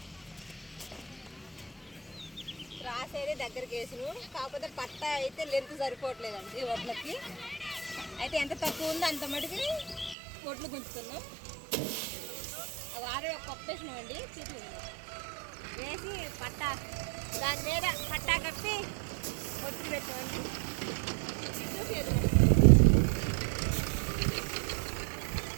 రాసేది దగ్గరికి వేసిను, కాకపోతే పట్ట అయితే లెంత్ సరిపోవట్లేదండి వడ్లకి. అయితే ఎంత తక్కువ ఉందో అంత మటుకి వడ్లు గుంచుతున్నాం. వారే పప్పు వేసినామండి, వేసి పట్ట దాని మీద పట్టా కప్పి వడ్లు పెట్టామండి.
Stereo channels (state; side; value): drops out; left; at 10.2 s